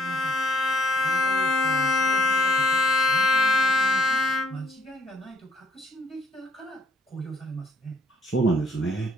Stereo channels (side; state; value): both; normal; correlation 0.64